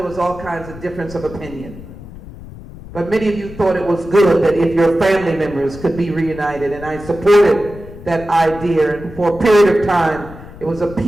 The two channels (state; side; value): noise; left; rumble, 16 dB below the sound